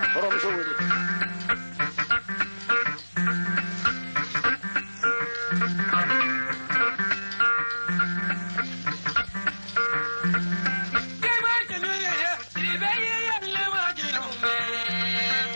Orang musuh ini.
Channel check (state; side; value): inverted; both; correlation -1.00